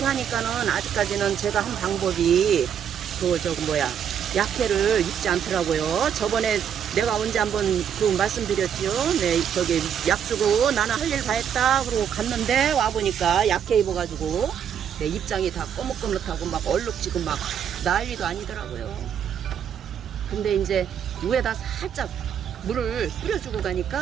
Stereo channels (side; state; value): left; quieter; 8.5 dB